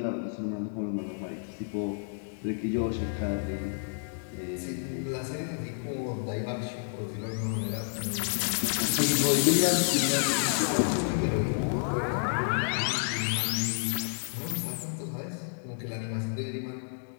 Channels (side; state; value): right; silent; digital silence